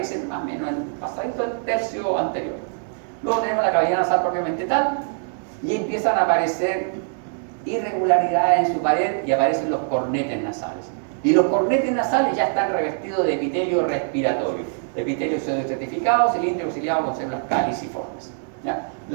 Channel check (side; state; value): left; silent; digital silence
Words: más o menos en pasadito el tercio anterior. Luego tenemos la cavidad nasal propiamente tal y empiezan a aparecer irregularidades en su pared y aparecen los cornetes nasales. Y los cornetes nasales ya están revestidos de epitelio respiratorio. Epitelio pseudoestratificado, cilíndrico auxiliado con células caliciformes, ¿ya?